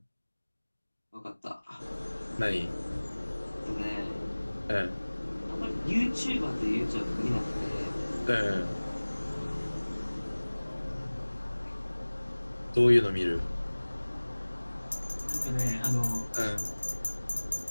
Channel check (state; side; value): inverted; both; correlation -1.00